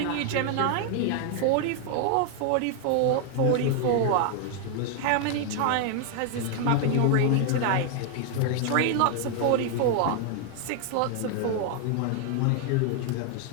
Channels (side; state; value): both; different; correlation 0.00